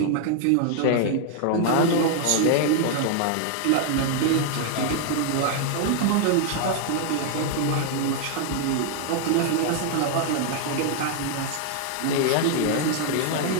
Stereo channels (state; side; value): different; both; correlation 0.00